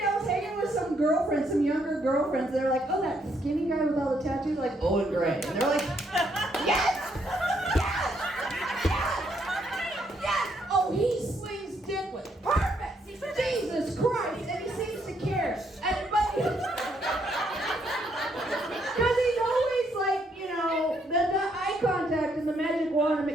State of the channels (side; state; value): both; normal; correlation 0.73